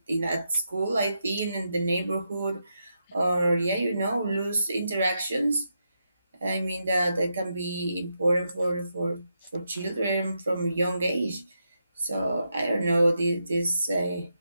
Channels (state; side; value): inverted; both; correlation -0.84